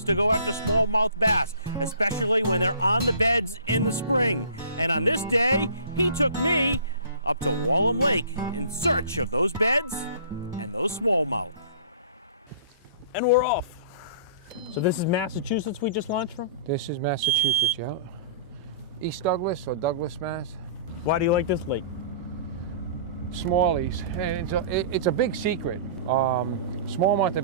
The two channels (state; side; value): inverted; both; correlation -0.47